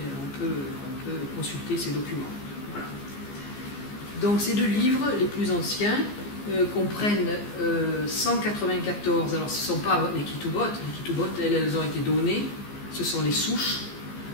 On peut consulter ces documents. Voilà. Donc ces 2 livres, les plus anciens, comprennent 194. Alors ce ne sont pas les Ketubot. Les Ketubot, elles ont été données. Ce sont les souches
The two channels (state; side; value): late; right; 15 ms